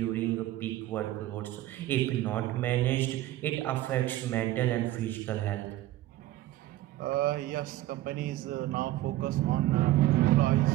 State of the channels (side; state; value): left; quieter; 15.4 dB